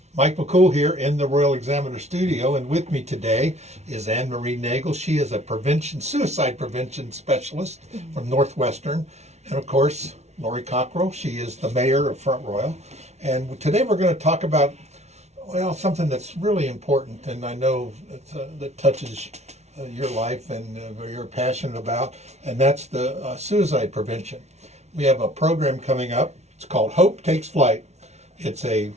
Mike McCool here in the Royal Examiner studio, and with me today is Marie Nagel. She is a suicide prevention specialist from Northwestern, and of course, Lori Cockrell. She is the mayor of Front Royal, and today we're going to talk about, well, something that's really important, and I know that touches your life and you're passionate about, and that's the suicide prevention. We have a program coming up. It's called Hope Takes Flight. It's a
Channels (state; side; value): late; left; 0.32 ms